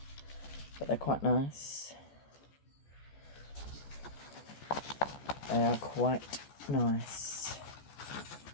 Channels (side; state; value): right; late; 14 ms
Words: but they're quite nice. They are quite nice.